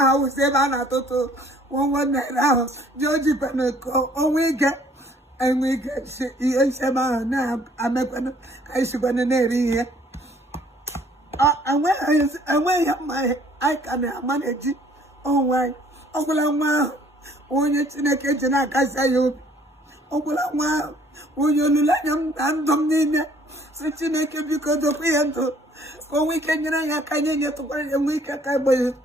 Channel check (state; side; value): normal; both; correlation 0.59